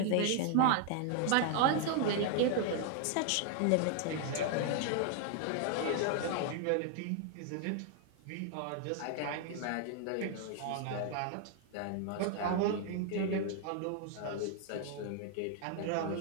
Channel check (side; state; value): both; different; correlation 0.00